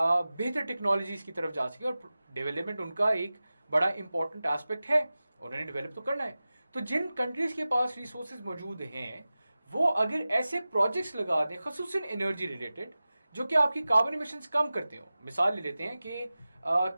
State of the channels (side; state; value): both; inverted; correlation -0.96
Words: टेक्नोलॉजीज की तरफ जा सके, और डेवलपमेंट उनका एक बड़ा इंपॉर्टेंट एस्पेक्ट है, उन्होंने डेवलप तो करना है, तो जिन कंट्रीज के पास रिसोर्सेज मौजूद हैं, वो अगर ऐसे प्रोजेक्ट्स लगा दें खसूसन एनर्जी रिलेटेड जो कि आपकी कार्बन इमिशंस कम करते हो। मिसाल ले लेते हैं कि